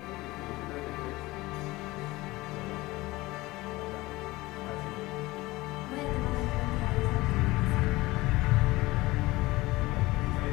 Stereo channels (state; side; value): quieter; right; 20.1 dB